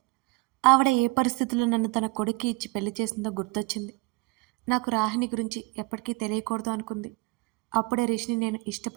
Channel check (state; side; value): quieter; left; 25.3 dB